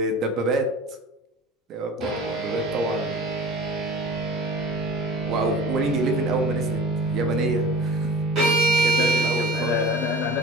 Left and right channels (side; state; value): both; normal; correlation 0.40